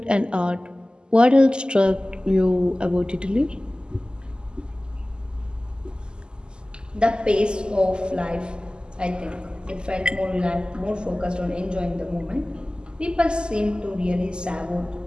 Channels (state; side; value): late; left; 0.047 ms